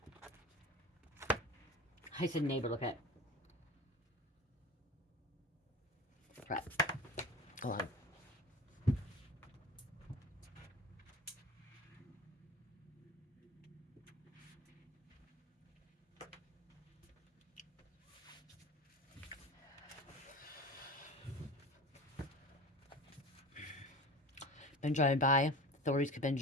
I said neighbor, look at it. Right. Hold on. been driving by. Authorities could have been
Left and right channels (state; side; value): normal; both; correlation 0.34